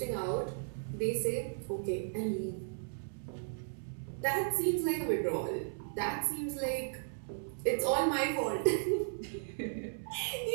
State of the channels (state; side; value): silent; left; 54 dB below the other